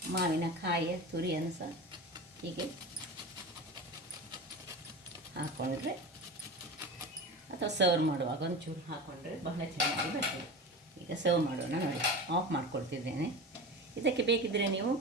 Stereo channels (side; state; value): both; normal; correlation 0.29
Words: ಮಾವಿನಕಾಯಿಯ ತುರಿಯನ್ನು ಸಹ ಹೀಗೆ ಹಾಕ್ಕೊಂಡ್ರೆ, ಅಥವಾ ಸರ್ವ್ ಮಾಡುವಾಗ ಒಂಚೂರು ಹಾಕ್ಕೊಂಡ್ರೆ ಬಹಳ ಚೆನ್ನಾಗಿ ಬರ್ತದೆ. ಈಗ ಸರ್ವ್ ಮಾಡೋಣ ನೋಡಿ. ಆಫ್ ಮಾಡಿಕೊಡ್ತಿದ್ದೇನೆ. ಇದಕ್ಕೆ ಬೇಕಿದ್ದರೆ ನೀವು